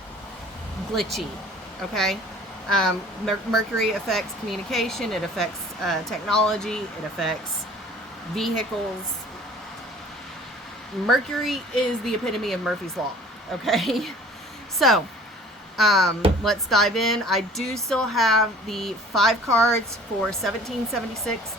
glitchy, okay? Mercury affects communication, it affects technology, it affects vehicles. Mercury is the epitome of Murphy's Law, okay? So, let's dive in. I do still have the 5 cards for 1776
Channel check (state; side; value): normal; both; correlation 0.49